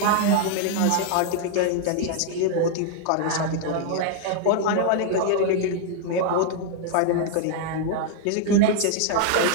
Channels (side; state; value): both; different; correlation 0.00